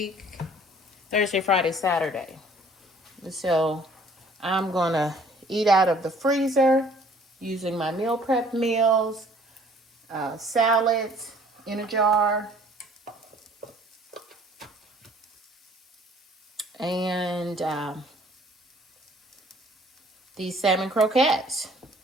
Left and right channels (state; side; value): normal; both; correlation 0.55